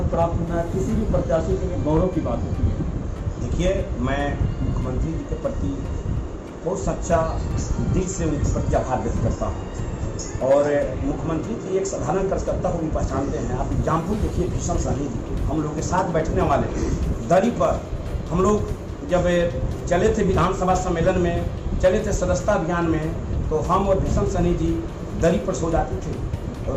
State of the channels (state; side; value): identical; both; correlation 1.00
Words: प्राप्त होना किसी भी प्रत्याशी के लिए गौरव की बात होती है। देखिए, मैं मुख्यमंत्री जी के प्रति बहुत सच्चा दिल से उनके प्रति आभार व्यक्त करता हूँ। और मुख्यमंत्री जी एक साधारण कार्यकर्ता को भी पहचानते हैं। आप एग्जाम्पल देखिए, भीषण सहनी जी हम लोग के साथ बैठने वाले दरी पर, हम लोग जब चले थे विधानसभा सम्मेलन में, चले थे सदस्यता अभियान में, तो हम और भीषण सहनी जी दरी पर सो जाते थे।